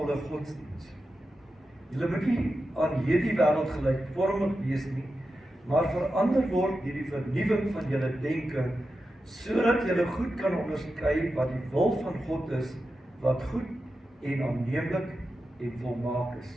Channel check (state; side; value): normal; both; correlation 0.90